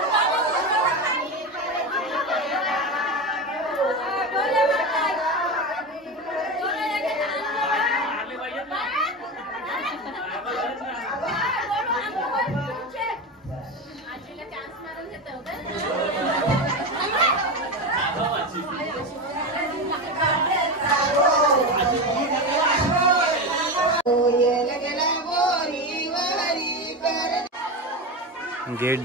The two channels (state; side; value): normal; both; correlation 0.20